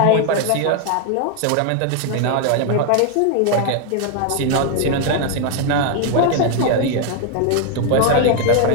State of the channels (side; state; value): both; different; correlation 0.00